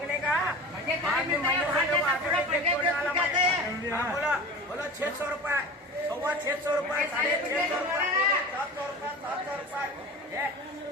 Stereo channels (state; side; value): normal; both; correlation 0.34